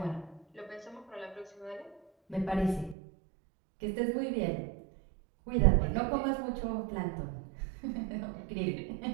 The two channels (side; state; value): left; drops out; at 3.0 s